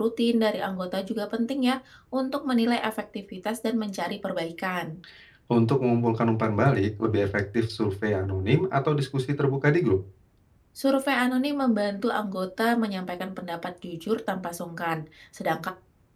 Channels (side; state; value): both; identical; correlation 1.00